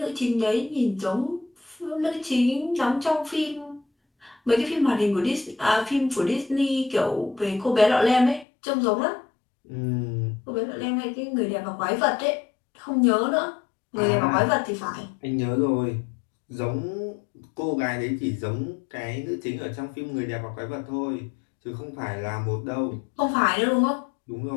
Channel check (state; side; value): drops out; right; at 8.5 s